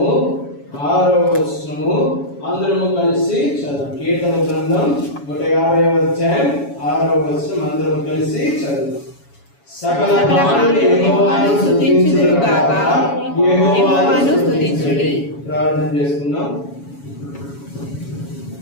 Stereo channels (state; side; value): late; right; 7.1 ms